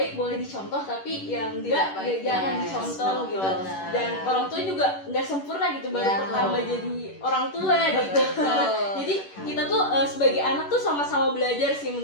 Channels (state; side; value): late; right; 11 ms